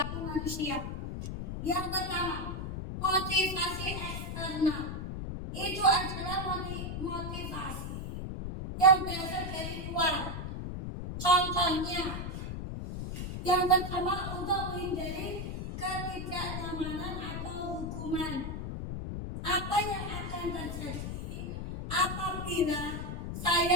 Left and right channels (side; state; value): left; noise; rumble, 5 dB below the sound